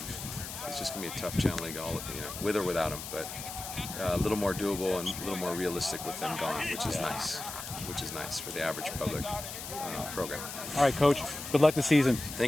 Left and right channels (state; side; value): noise; left; hiss, 9 dB below the sound